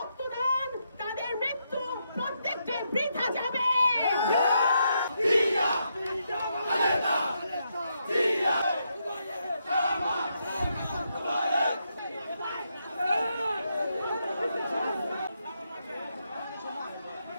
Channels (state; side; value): inverted; both; correlation -0.80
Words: তাদের মৃত্যু প্রত্যেকটি বৃথা যাবে।